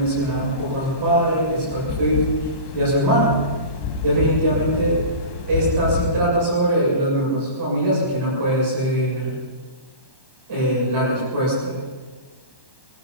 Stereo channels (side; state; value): right; late; 1.1 ms